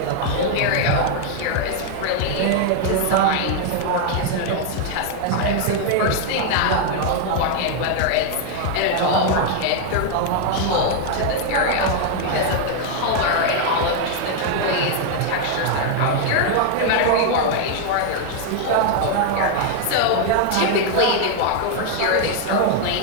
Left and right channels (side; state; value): both; different; correlation 0.00